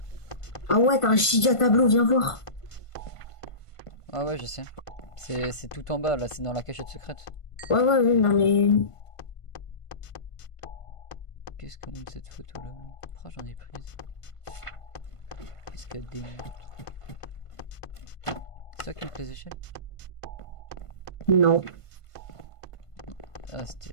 Ah ouais, t'as un giga tableau, viens voir. Ah ouais, je sais. C'est tout en bas, là, c'est dans la cachette secrète. Ouais, non mais... Qu'est-ce qu'on a de cette photo là? Pourquoi j'en ai prise? Qu'est-ce qu'elle démontre? C'est ça qui me plaît les échelles? Non. Ah,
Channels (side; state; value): right; late; 1.5 ms